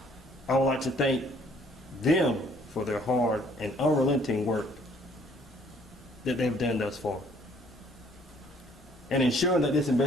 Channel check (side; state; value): both; normal; correlation 0.61